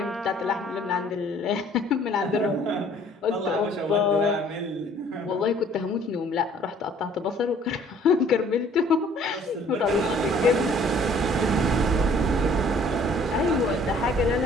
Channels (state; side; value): normal; both; correlation 0.57